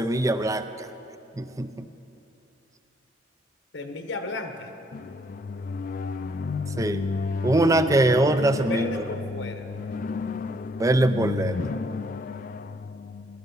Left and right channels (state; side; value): normal; both; correlation 0.68